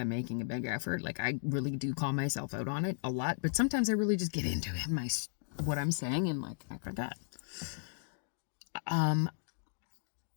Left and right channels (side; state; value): right; silent; digital silence